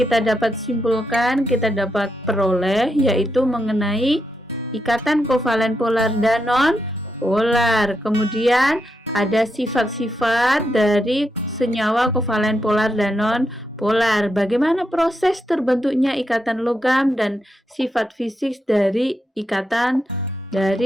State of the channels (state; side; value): normal; both; correlation 0.83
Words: dapat simpulkan, kita dapat peroleh yaitu mengenai ikatan kovalen polar dan non-polar. Kemudian ada sifat-sifat dari senyawa kovalen polar dan non-polar. Bagaimana proses terbentuknya ikatan logam dan sifat fisik dari ikatan